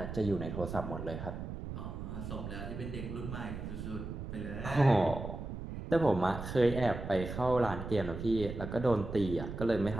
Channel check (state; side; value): noise; right; rumble, 7 dB below the sound